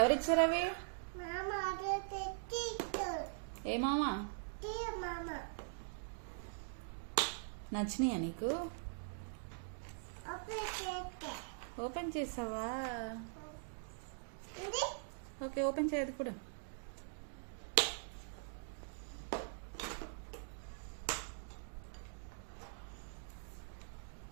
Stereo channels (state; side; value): silent; left; digital silence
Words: అవి? ఏ మామా? నచ్చినాయా నీకు? ఓపెన్ చేసావా? ఓకే, ఓపెన్ చేయదు కూడా.